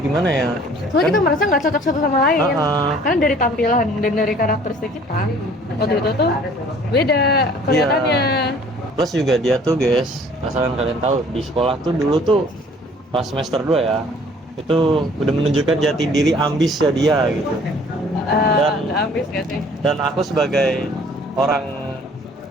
ya? Soalnya kita merasa nggak cocok satu sama lain. Uh-uh. Karena dari tampilan dan dari karakteristik kita waktu itu tuh beda kelihatannya. Plus juga dia tuh guys, asalkan kalian tahu, di sekolah tuh dulu tuh pas semester 2 ya, itu udah menunjukkan jati diri ambis ya dia gitu. Nggak habis nggak sih? Dan aku sebagai orang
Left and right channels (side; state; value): both; normal; correlation 0.54